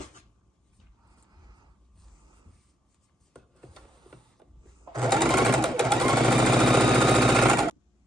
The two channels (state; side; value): normal; both; correlation 0.76